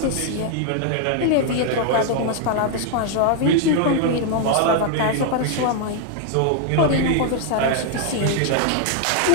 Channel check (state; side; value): different; both; correlation 0.00